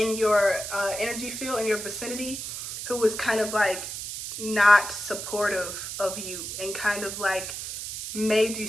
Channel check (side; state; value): right; noise; hiss, 7 dB below the sound